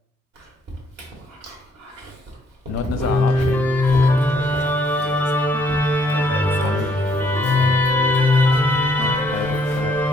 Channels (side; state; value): both; normal; correlation 0.68